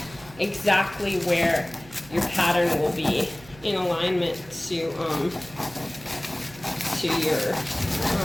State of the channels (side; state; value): right; noise; hum, 22 dB below the sound